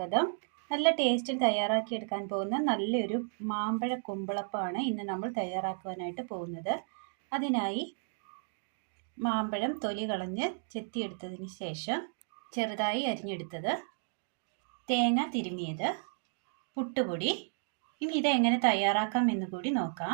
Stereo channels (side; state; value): left; silent; digital silence